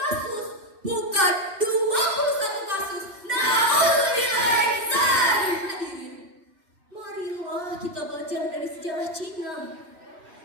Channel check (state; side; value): late; left; 2.6 ms